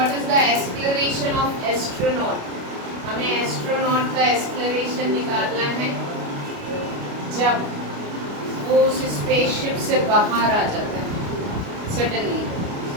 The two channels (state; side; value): late; left; 29 ms